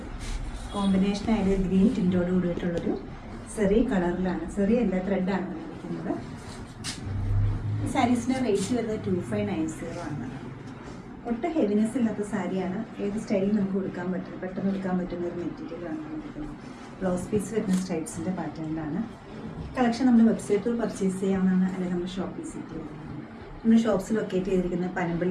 കോമ്പിനേഷനായിട്ട് ഗ്രീൻ ടിൻറ്റോട് കൂടിയിട്ടുള്ളൊരു സെറി കളറിലാണ്. സെറി അല്ല, ത്രെഡാണ് വന്നിരിക്കുന്നത്. ഈ സാരീസിൻ്റെ റേറ്റ് വരുന്നത് 2590 ആണ്. ഒട്ടും ഹെവിനെസ് ഇല്ലാത്ത സാരിയാണ്. ഏത് സ്റ്റൈലിൽ നമുക്ക് കൊടുക്കാൻ പറ്റും, പെട്ടെന്ന് എടുക്കാൻ പറ്റുന്ന ഒരു മെറ്റീരിയലാണ് വന്നിരിക്കുന്നത്. ബ്ലൗസ് പീസ് വരുന്ന സ്ട്രൈപ്സിൻ്റെ പാറ്റേണിലാണ്. കളക്ഷൻ നമ്മൾ വെബ്സൈറ്റിൽ പർച്ചേസ് ചെയ്യാവുന്നതാണ്, അല്ലെങ്കിൽ നമ്മൾ ഷോപ്പ് വിസിറ്റ് ചെയ്യാവുന്നതാണ്. നമ്മുടെ ഷോപ്സ് ലൊക്കേറ്റ് ചെയ്തിരിക്കുന്ന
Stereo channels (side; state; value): both; identical; correlation 1.00